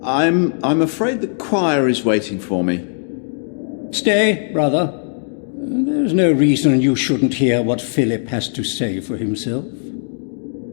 I'm afraid the choir is waiting for me. Stay, brother. There's no reason you shouldn't hear what Philip has to say for himself.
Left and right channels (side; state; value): right; silent; digital silence